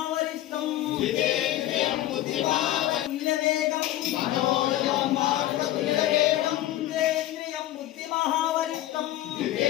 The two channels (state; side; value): quieter; right; 14.2 dB